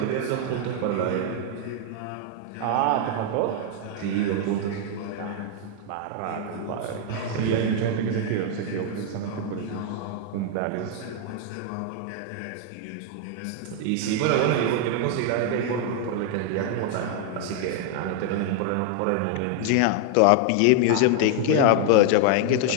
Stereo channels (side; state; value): both; different; correlation 0.00